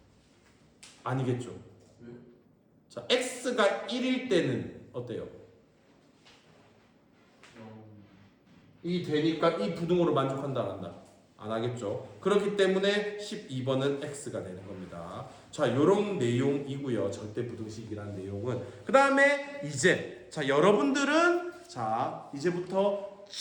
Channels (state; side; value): identical; both; correlation 1.00